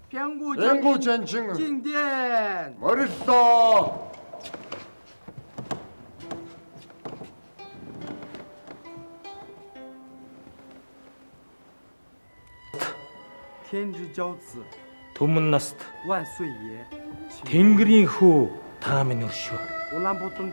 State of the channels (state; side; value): inverted; both; correlation -1.00